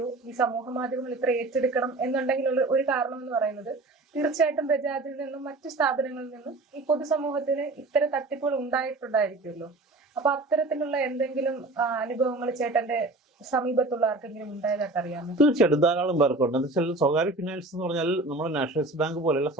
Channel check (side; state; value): left; quieter; 3.0 dB